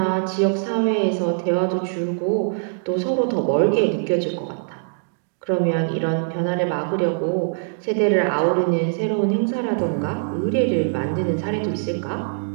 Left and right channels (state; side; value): silent; left; digital silence